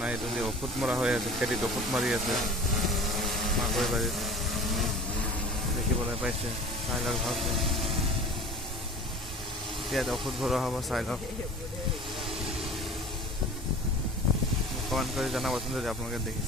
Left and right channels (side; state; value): both; normal; correlation 0.41